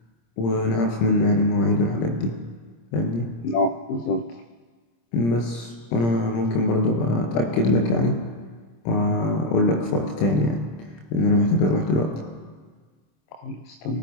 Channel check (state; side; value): late; right; 26 ms